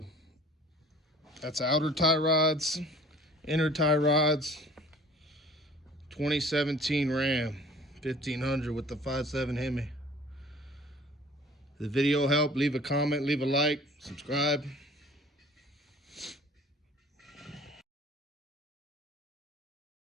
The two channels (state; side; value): normal; both; correlation 0.49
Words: that's outer tie rods, inner tie rods, 2017 Ram 1500 with the 5.7 Hemi. If the video helped, leave a comment, leave a like, subscribe.